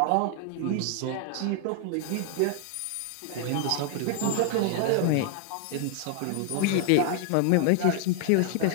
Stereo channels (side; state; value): both; different; correlation 0.00